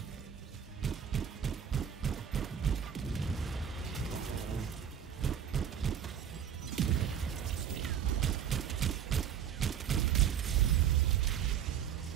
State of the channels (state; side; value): quieter; left; 8.8 dB